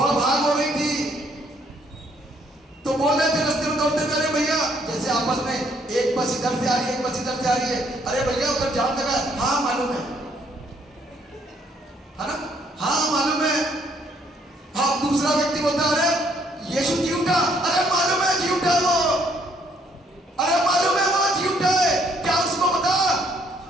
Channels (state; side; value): normal; both; correlation 0.67